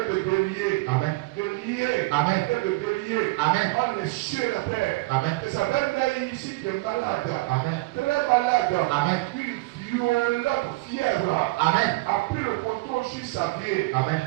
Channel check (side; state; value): left; quieter; 22.8 dB